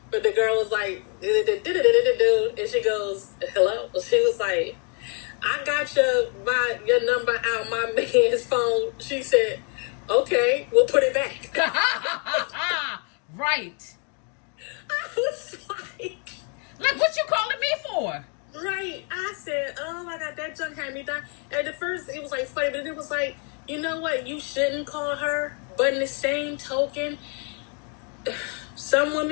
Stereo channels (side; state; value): right; quieter; 38.7 dB